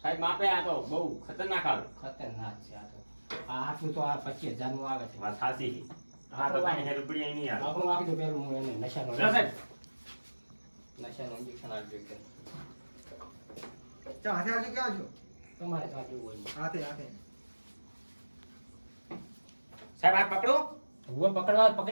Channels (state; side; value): inverted; both; correlation -1.00